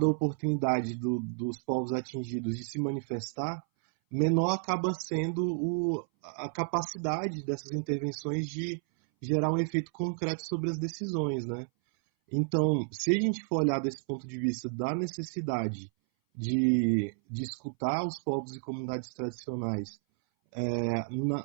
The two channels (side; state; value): left; silent; 57 dB below the other